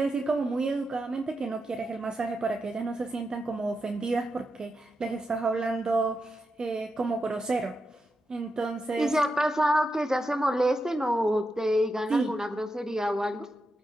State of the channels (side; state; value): both; normal; correlation 0.87